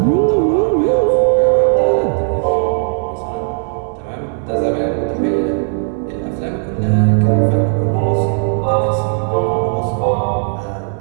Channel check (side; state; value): left; silent; 59 dB below the other